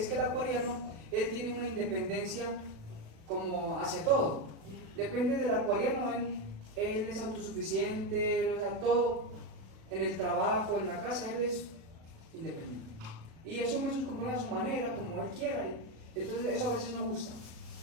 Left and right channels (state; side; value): late; left; 37 ms